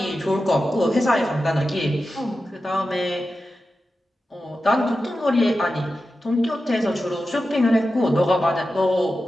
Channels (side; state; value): both; normal; correlation 0.92